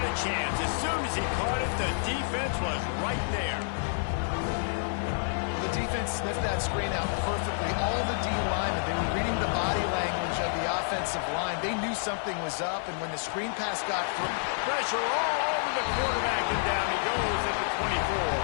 a chance. As soon as he caught it, the defense was right there. The defense sniffed that screen out perfectly. All the D linemen, they were reading the body language of the offensive line. They knew something was up, and when the screen pass got through, pressure all over the quarterback, and down he goes at the 24.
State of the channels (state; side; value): silent; right; digital silence